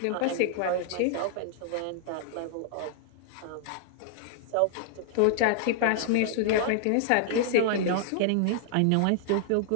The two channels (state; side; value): different; both; correlation -0.01